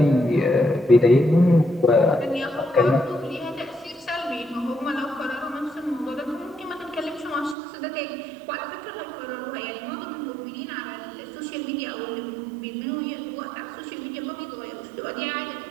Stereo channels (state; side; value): drops out; left; at 7.6 s